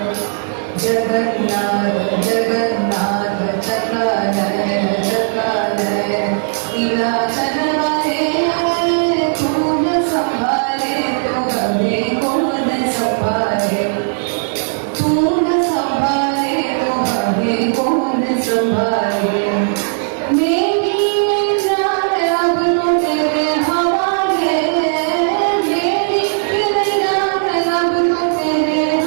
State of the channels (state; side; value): silent; left; 68 dB below the other